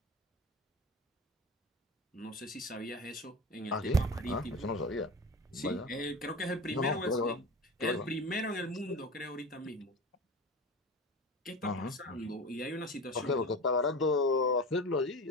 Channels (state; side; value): normal; both; correlation 0.31